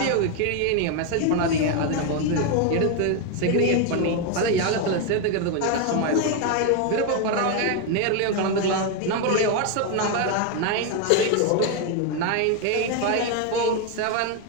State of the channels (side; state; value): both; different; correlation 0.01